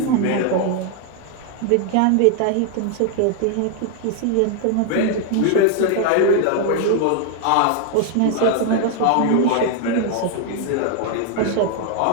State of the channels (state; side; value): different; both; correlation 0.00